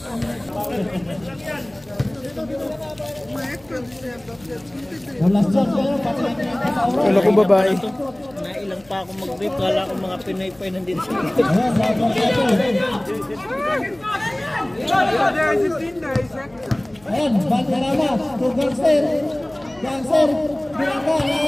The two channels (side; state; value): left; noise; hum, 28 dB below the sound